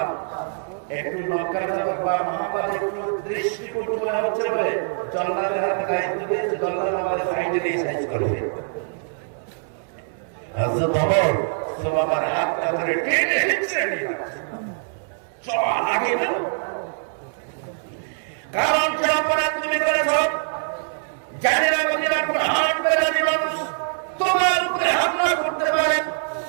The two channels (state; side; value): silent; left; digital silence